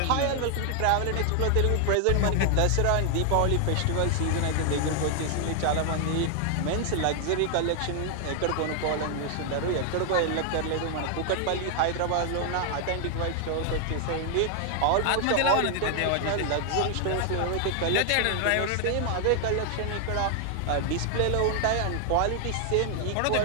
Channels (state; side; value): different; both; correlation 0.00